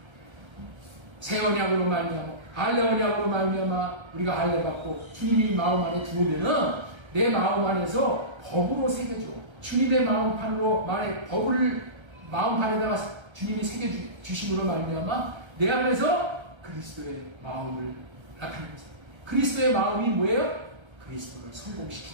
새 언약으로 말미암아, 할례 언약으로 말미암아 우리가 할례 받고 주님이 마음 안에 들어오면은 내 마음 안에서 법으로 새겨줘. 주님의 마음판으로 법을 마음판에다가 주님이 새겨주심으로 말미암아 내 안에서 그리스도의 마음을 나타내면서, 그리스도의 마음이 뭐예요? 그리스도를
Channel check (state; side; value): late; left; 1.3 ms